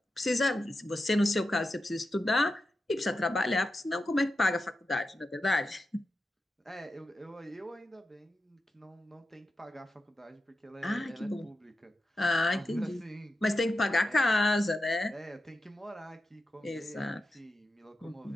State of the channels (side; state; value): both; normal; correlation 0.91